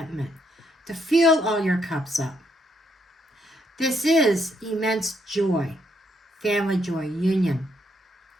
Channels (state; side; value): normal; both; correlation 0.74